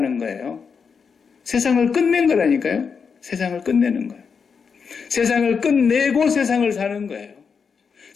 거예요. 세상을 끝낸 거라니까요. 세상을 끝내는 거예요. 세상을 끝내고 세상을 사는 거예요.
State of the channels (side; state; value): right; quieter; 5.9 dB